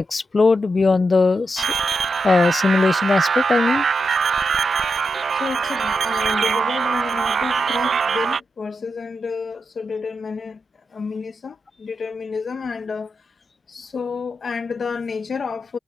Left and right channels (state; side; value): normal; both; correlation 0.86